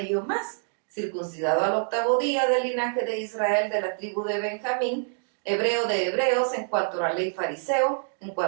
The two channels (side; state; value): left; silent; digital silence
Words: yo más, circuncidado al 8º día, del linaje de Israel, de la tribu de Benjamín, hebreo de hebreos, en cuanto a la ley fariseo, en